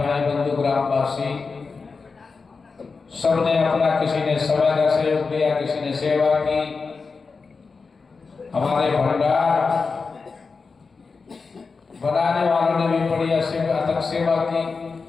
बंधु ग्रामवासी सबने अपना, किसी ने समय का सहयोग दिया, किसी ने सेवा की। हमारे भंडार बनाने वालों ने भी बड़ी अथक सेवा की।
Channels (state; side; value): quieter; right; 4.6 dB